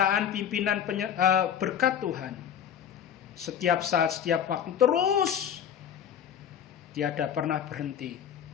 pimpinan berkat Tuhan. Setiap saat, setiap waktu terus tiada pernah berhenti.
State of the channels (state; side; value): quieter; right; 8.9 dB